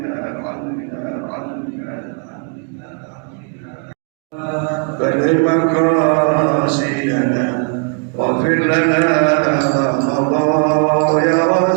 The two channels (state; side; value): quieter; left; 37.6 dB